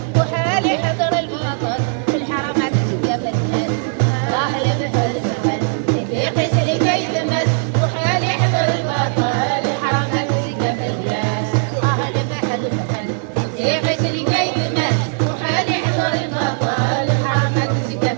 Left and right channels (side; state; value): left; silent; digital silence